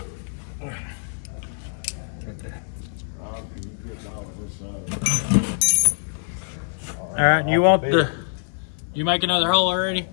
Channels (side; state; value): right; silent; digital silence